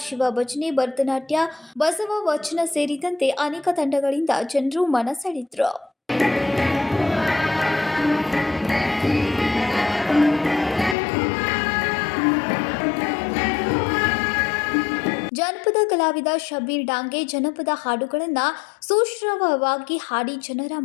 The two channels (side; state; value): right; drops out; at 11.0 s